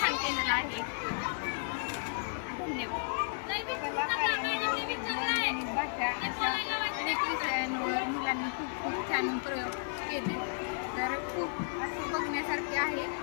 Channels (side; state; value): right; silent; 56 dB below the other